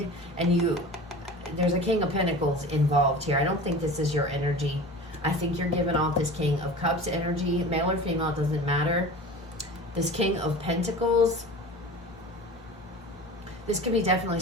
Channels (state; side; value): normal; both; correlation 0.36